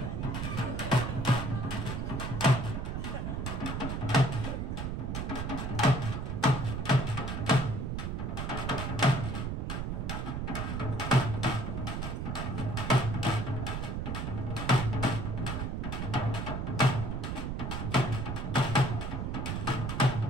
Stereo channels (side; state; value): right; noise; rumble, 2 dB below the sound